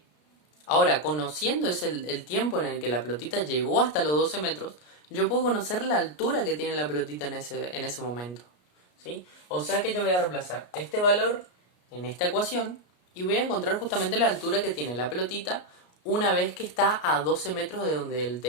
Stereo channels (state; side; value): late; right; 33 ms